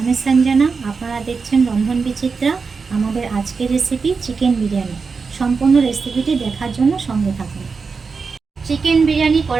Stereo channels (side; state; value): left; quieter; 4.9 dB